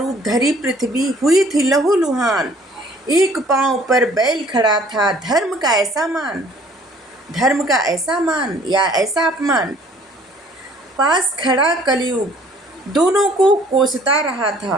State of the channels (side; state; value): both; normal; correlation 0.56